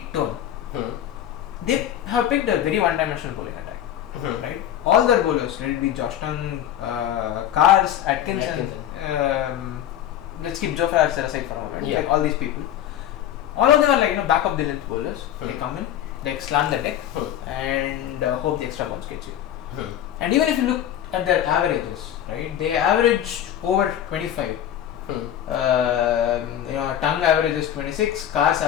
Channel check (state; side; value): quieter; right; 11.0 dB